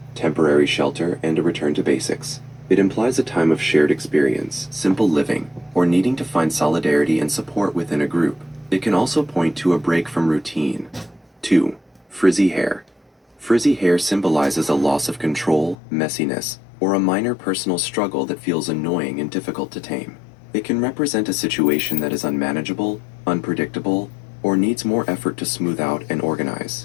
temporary shelter, and a return to basics. It implies a time of shared experience, simple living, or needing to find solidarity and support within a group. It can also point to a break from routine. 2. Frizzy hair. Frizzy hair symbolizes a loss of control, messiness, or a minor personal struggle that feels annoying and difficult to tame. It can represent a situation that is unmanageable, unpredictable, or needs more effort to smooth out and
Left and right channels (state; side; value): drops out; right; at 15.8 s